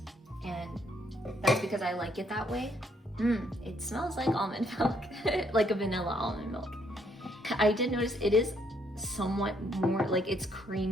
and that's because I like it that way. It smells like almond milk, like a vanilla almond milk. I did notice it is somewhat more, like it's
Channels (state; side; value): normal; both; correlation 0.70